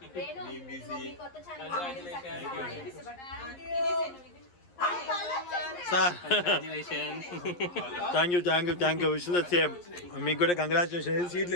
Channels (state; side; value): late; right; 11 ms